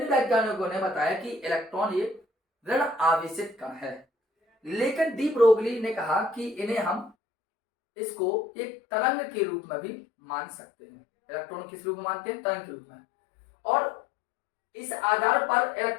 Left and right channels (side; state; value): right; drops out; at 7.1 s